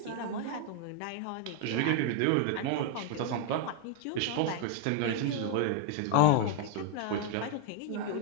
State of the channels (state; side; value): different; both; correlation -0.01